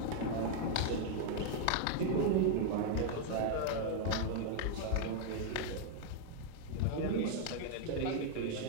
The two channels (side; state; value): both; different; correlation 0.00